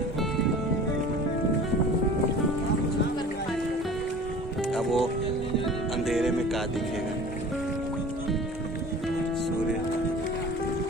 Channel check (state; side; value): normal; both; correlation 0.42